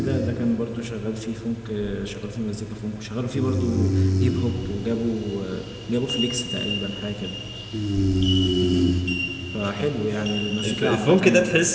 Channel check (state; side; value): identical; both; correlation 1.00